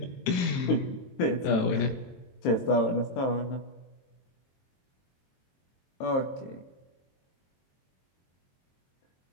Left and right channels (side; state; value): right; late; 22 ms